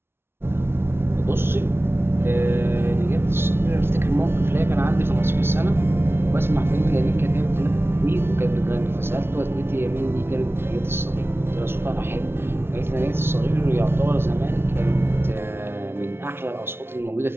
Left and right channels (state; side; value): late; left; 0.12 ms